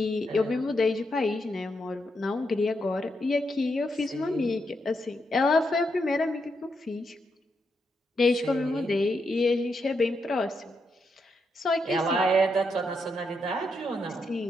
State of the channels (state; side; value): normal; both; correlation 0.82